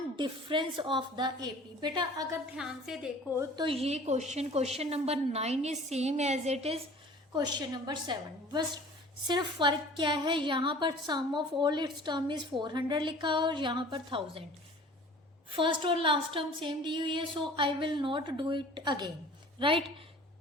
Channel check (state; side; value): normal; both; correlation 0.46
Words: difference of the AP. बेटा अगर ध्यान से देखो तो ये question number 9 is same as it is question number 7, बस सिर्फ फर्क क्या है, यहाँ पर sum of all its term is 400 लिखा और यहाँ पर 1000। फर्स्ट और लास्ट टर्म सेम दी हुई है, so I will not do it again, right.